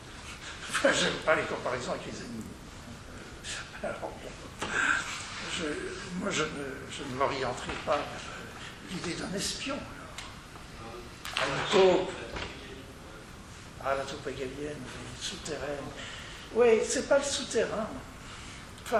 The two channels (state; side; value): identical; both; correlation 1.00